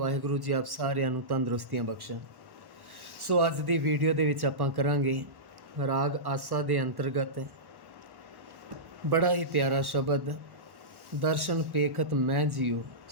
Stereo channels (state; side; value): late; left; 1.1 ms